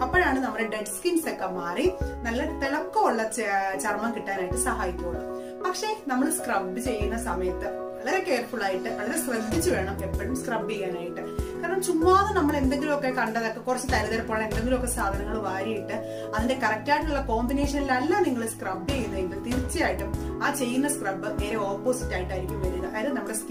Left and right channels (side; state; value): both; identical; correlation 1.00